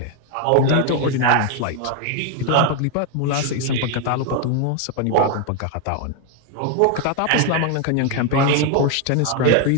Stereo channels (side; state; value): both; different; correlation 0.01